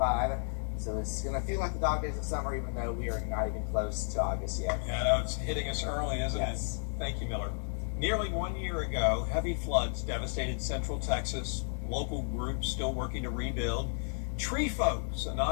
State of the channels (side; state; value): right; silent; 56 dB below the other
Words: So it's going to feel like the dog days of summer, even though we are not even close to August yet. Yeah, I know it's hitting us early, isn't it? Thank you, Miller. Nearly 1 year ago, heavy floods devastated central Texas. Local groups still working to rebuild. Tree Folks, a